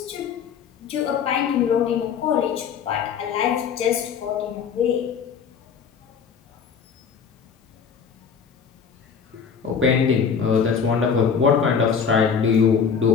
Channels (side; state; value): right; quieter; 6.6 dB